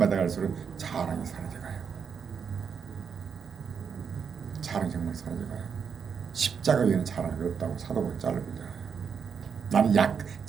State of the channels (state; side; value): quieter; left; 6.6 dB